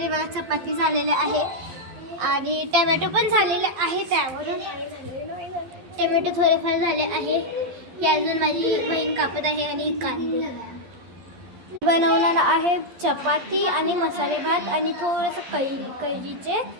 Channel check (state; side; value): late; left; 12 ms